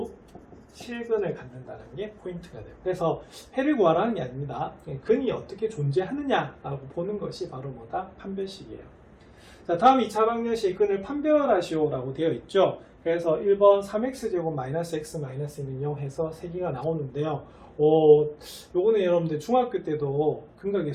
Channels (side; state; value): both; identical; correlation 1.00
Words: 실근을 갖는다는 게 포인트가 돼요. 그래서 해를 구하라는 게 아닙니다. 근이 어떻게 존재하느냐라고 보는 것이 바로 뭐다? 판별식이에요. 자, 다음 2차 방정식 근을 판별하시오라고 되어 있죠. 그래서 1번 3x제곱 마이너스 x 마이너스는 0 해서 3개가 나오는데요. 요거는 여러분들 중학교 때도 근과